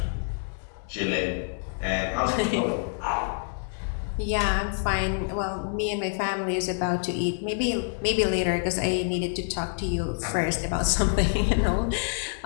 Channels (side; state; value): right; silent; 60 dB below the other